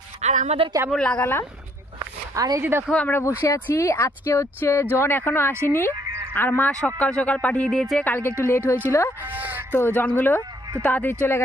আর আমাদের কেমন লাগালাম। আর এই যে দেখো আমরা বসে আছি, আজকে হচ্ছে জন এখনো আসেনি, আর মা সকাল সকাল পাঠিয়ে দিয়েছে, কালকে একটু লেট হয়েছিল তো জনগুলো তো তাড়াতাড়ি চলে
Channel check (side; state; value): both; normal; correlation 0.67